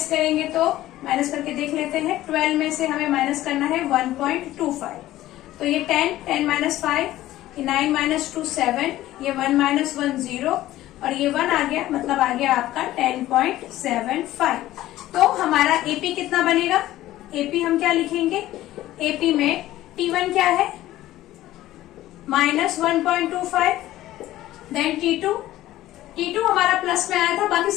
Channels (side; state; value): right; quieter; 15.0 dB